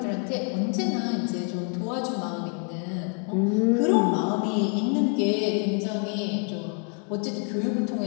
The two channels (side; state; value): right; quieter; 39.6 dB